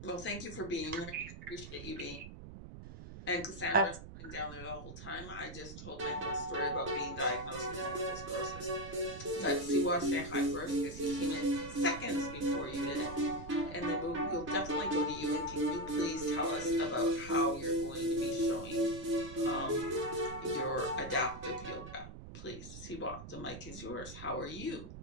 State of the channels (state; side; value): noise; right; rumble, 12 dB below the sound